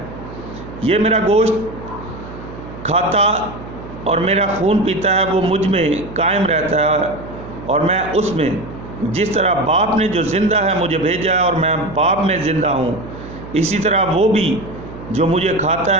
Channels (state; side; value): noise; right; hum, 13 dB below the sound